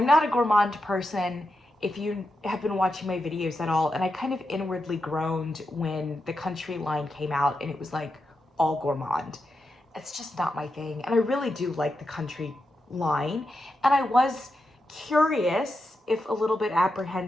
not a gourmand person if you have been watching my videos at all, and I kind of inwardly groaned when the Country line came out and it was like all gourmand. It's just not my thing, and I really do like the Country line, and I was curious, if a little bit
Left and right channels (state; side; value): normal; both; correlation 0.87